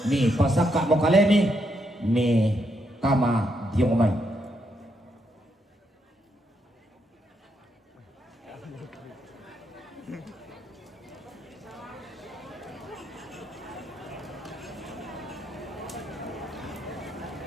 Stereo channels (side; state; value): both; normal; correlation 0.78